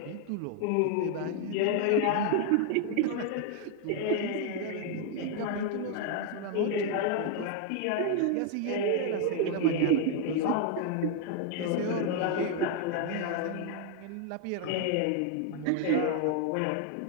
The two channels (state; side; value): different; both; correlation 0.00